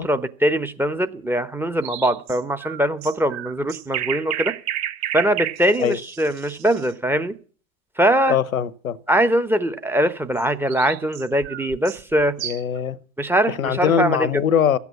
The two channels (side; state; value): both; normal; correlation 0.57